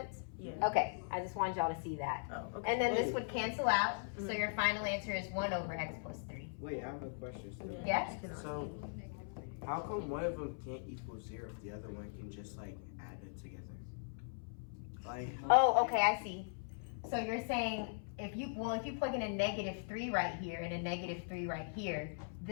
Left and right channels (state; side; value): silent; right; 51 dB below the other